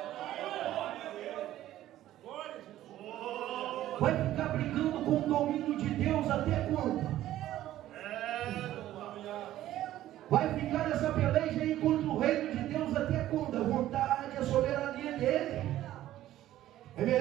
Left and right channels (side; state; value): left; quieter; 13.6 dB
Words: Vai ficar brigando com o domínio de Deus até quando? Vai ficar nessa peleja aí contra o reino de Deus até quando? A vontade, a soberania dele. É